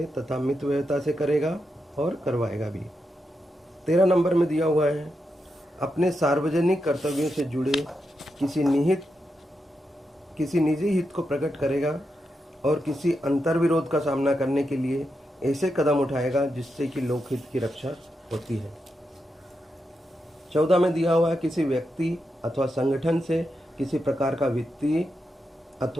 तथा मितव्ययता से करेगा और करवाएगा भी। 13 नंबर में दिया हुआ है अपने सार्वजनिक कर्तव्यों से जुड़े किसी निजी हित को प्रकट करेगा और किसी अंतर्विरोध का सामना करने के लिए ऐसे कदम उठाएगा जिससे कि लोकहित की रक्षा होती है। 14 में दिया हुआ है किसी व्यक्ति अथवा संगठन से किसी प्रकार का वित्तीय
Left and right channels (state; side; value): normal; both; correlation 0.86